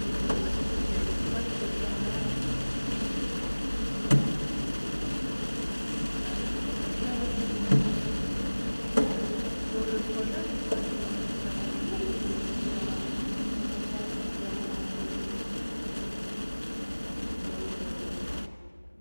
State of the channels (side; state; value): both; inverted; correlation -1.00